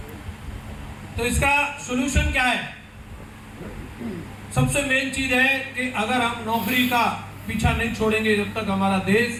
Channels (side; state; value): both; identical; correlation 1.00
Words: तो इसका सॉल्यूशन क्या है? सबसे मेन चीज है कि अगर हम नौकरी का पीछा नहीं छोड़ेंगे, जब तक हमारा देश